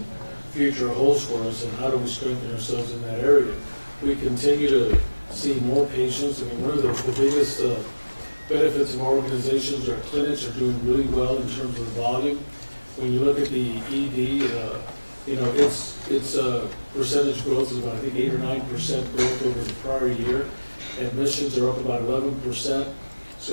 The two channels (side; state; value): both; inverted; correlation -1.00